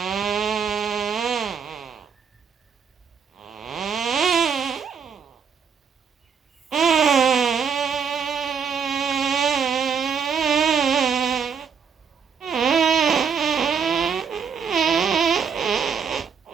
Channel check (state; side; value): quieter; left; 6.6 dB